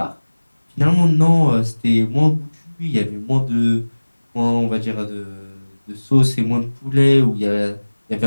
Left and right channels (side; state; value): both; inverted; correlation -1.00